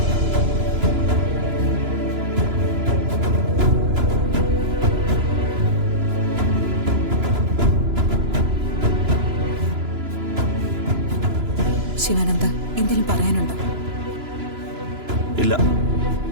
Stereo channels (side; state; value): left; late; 3.0 ms